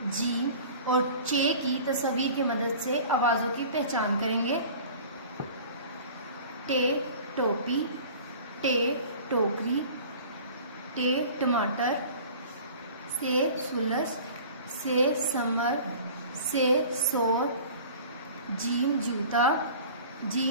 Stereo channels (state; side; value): inverted; both; correlation -0.43